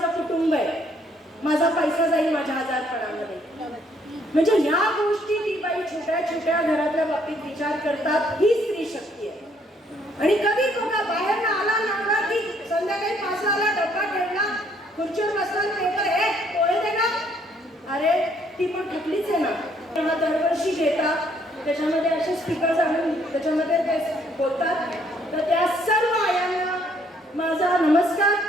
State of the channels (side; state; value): both; normal; correlation 0.66